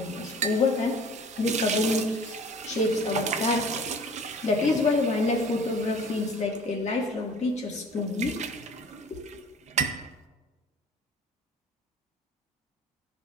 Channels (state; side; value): normal; both; correlation 0.47